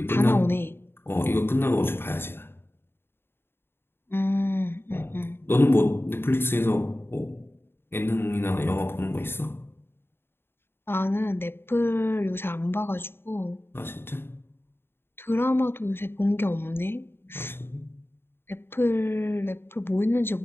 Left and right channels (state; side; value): late; right; 0.11 ms